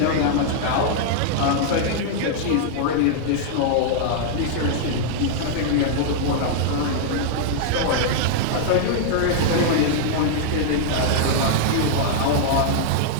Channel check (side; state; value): both; different; correlation -0.01